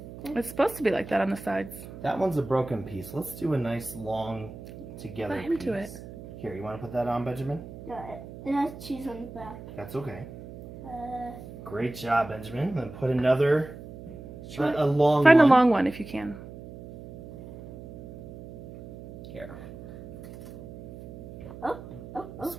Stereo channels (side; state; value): right; noise; hum, 14 dB below the sound